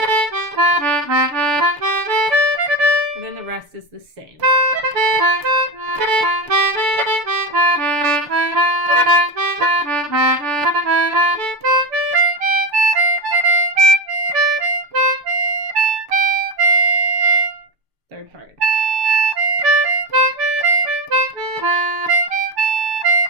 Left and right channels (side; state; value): left; late; 6.8 ms